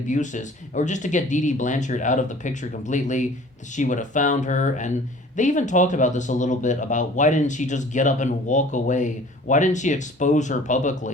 or just to get Dee Dee Blanchard out of the picture completely. She would have found her, and they even talked about this a little bit, about why didn't she just get up and walk away? Why didn't she expose her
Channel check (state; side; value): normal; both; correlation 0.48